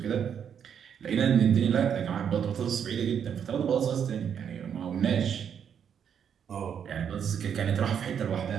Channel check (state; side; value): quieter; left; 8.1 dB